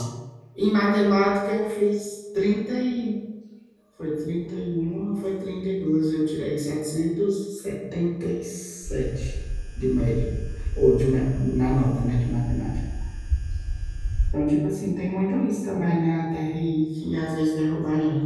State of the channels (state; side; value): identical; both; correlation 1.00